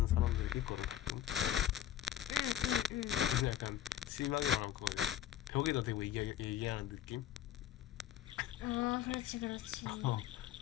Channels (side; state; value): right; quieter; 11.1 dB